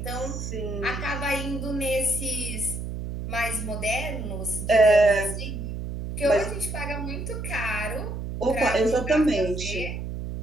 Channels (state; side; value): noise; right; hum, 6 dB below the sound